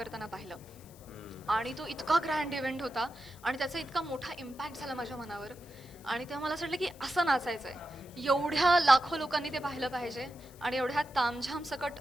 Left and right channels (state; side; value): noise; left; hiss, 23 dB below the sound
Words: पाहिलं, आणि तो इतका ग्रँड इव्हेंट होता आणि त्याचा इतका मोठा इम्पॅक्ट झाला माझ्या मनावर. आणि तेव्हा मला असं वाटलं की असं नाचायचंय, एवढ्या लाखो लोकांनी ते पाहिलं पाहिजे आणि एवढ्या तामझाम सकट